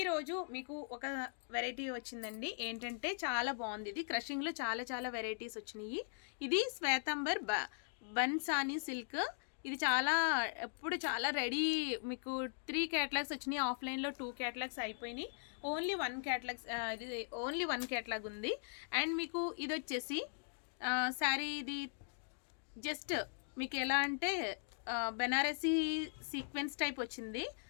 మీకు ఒక వెరైటీ వచ్చిందండి. ఏంటంటే చాలా బాగుంది. ఇది క్రషింగ్లో చాలా వెరైటీస్ వచ్చినాయి. ఇది శ్వేతాంబర్ బన్సానీ సిల్క్. ఇది ఎప్పుడు చాలా రెడీ. మీకు 3 క్యాటలాగ్స్ వచ్చినాయి. ఆఫ్లైన్లో 2 క్యాటలాగ్స్ అయిపోయినాయి. ఓన్లీ 1 క్యాటలాగ్ ఉంది. అండ్ మీకు ఇది వచ్చేసి శారీ ఇది జస్ట్ మీకు ఎలా అంటే బెనారసీ సీక్వెన్స్ టైప్ వచ్చింది.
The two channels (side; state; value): right; silent; digital silence